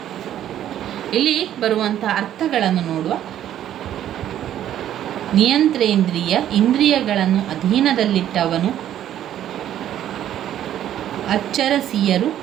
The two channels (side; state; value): left; quieter; 11.3 dB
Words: ಇಲ್ಲಿ ಬರುವಂಥ ಅರ್ಥಗಳನ್ನು ನೋಡುವ. ನಿಯಂತ್ರೇಂದ್ರಿಯ, ಇಂದ್ರಿಯಗಳನ್ನು ಅಧೀನದಲ್ಲಿಟ್ಟವನು. ಅಚ್ಚರಸಿಯರು,